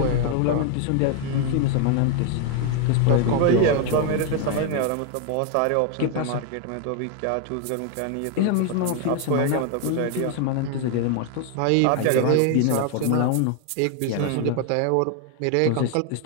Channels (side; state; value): both; different; correlation 0.01